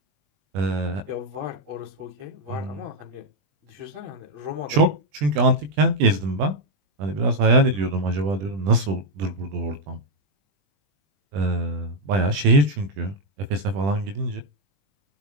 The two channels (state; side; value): late; left; 20 ms